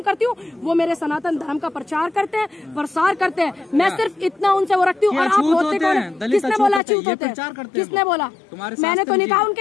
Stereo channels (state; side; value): drops out; right; at 6.8 s